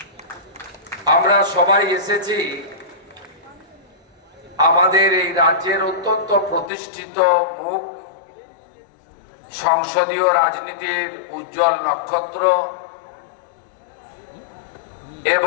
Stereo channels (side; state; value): right; drops out; at 6.7 s